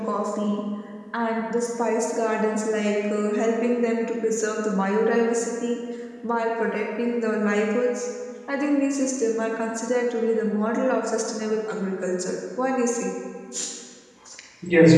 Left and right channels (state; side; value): identical; both; correlation 1.00